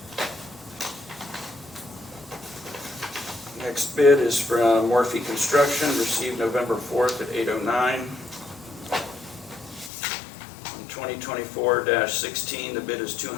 Next bid is from Morphe Construction, received November 4th at 8:09. On 2024-16, the bid is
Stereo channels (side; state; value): right; drops out; at 9.9 s